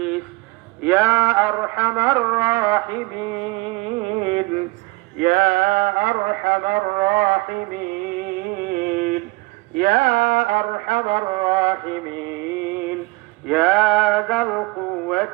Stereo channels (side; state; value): left; quieter; 25.0 dB